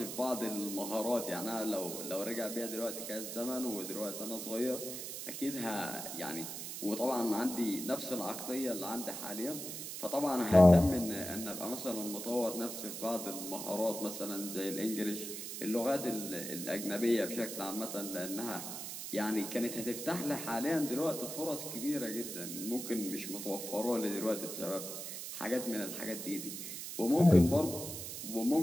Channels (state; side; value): noise; right; hiss, 7 dB below the sound